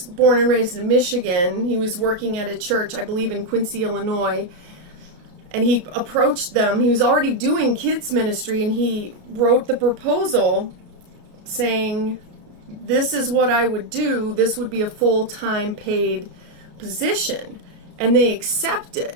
born and raised in Michigan. He was working at a church, I believe, in Quincy, Illinois, and he approached them. He was already doing kids ministry, and he wrote the proposal saying, this is what I would do. This would be a full-time paid position. And they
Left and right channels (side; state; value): left; late; 34 ms